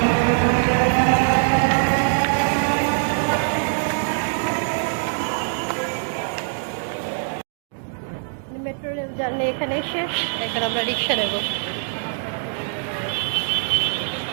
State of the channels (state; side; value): silent; left; digital silence